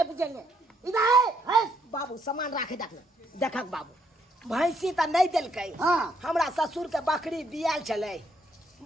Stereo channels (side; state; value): both; normal; correlation 0.72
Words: बुझेंगे। इधर है बाबू सामान राखे देखक बाबू, भैंसी त नहीं देलकै। हाँ। हमरा ससुर के बकरी बियाल छलै,